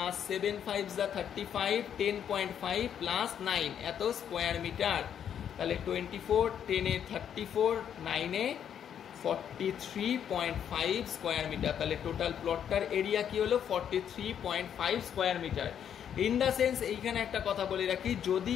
7 5 যা 35 10.5 প্লাস 9 এত স্কোয়ার মিটার। তাহলে 24 10 এ 34 9 এ 43.5 স্কোয়ার মিটার। তাহলে টোটাল প্লটটার এরিয়া কি হলো 43.5 square metre. In the sense এইখানে একটা কথা বলে রাখি, যদি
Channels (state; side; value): quieter; right; 8.9 dB